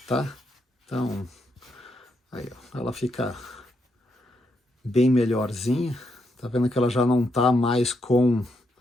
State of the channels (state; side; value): normal; both; correlation 0.80